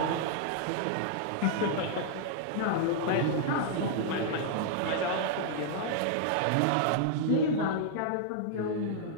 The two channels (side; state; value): both; different; correlation -0.01